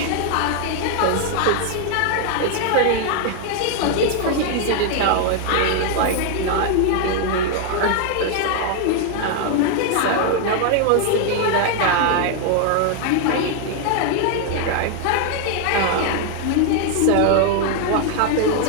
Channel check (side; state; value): both; different; correlation 0.00